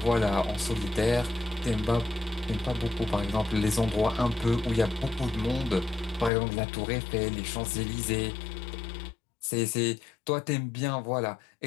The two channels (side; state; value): right; drops out; at 6.3 s